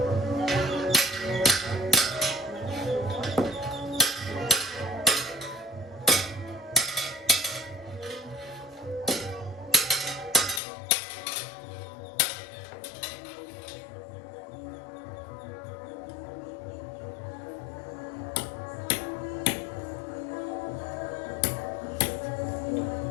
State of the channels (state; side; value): drops out; right; at 10.6 s